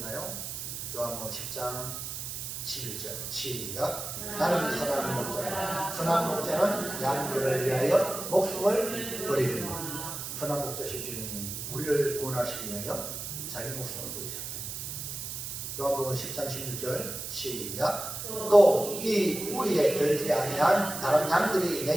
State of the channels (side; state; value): right; noise; hiss, 6 dB below the sound